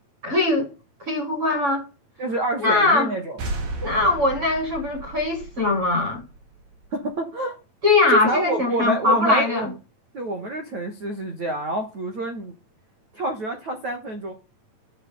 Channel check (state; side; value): late; left; 8.8 ms